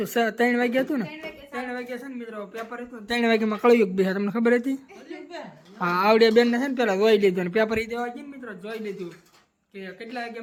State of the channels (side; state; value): both; identical; correlation 1.00